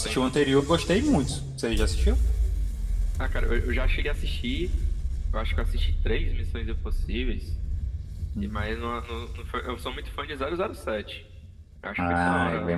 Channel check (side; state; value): both; identical; correlation 1.00